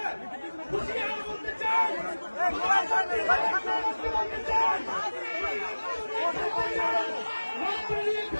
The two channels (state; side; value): inverted; both; correlation -1.00